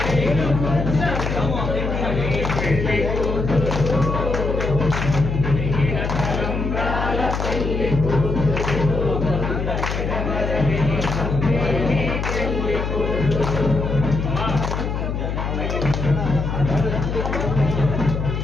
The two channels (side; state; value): left; noise; hum, 2 dB below the sound